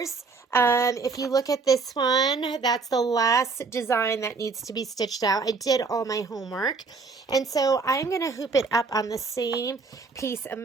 If you look at this one, that's the last design that needs to be stitched out. I did all my homework. And so I'm going to hoop it up on the same piece of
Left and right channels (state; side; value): quieter; left; 4.4 dB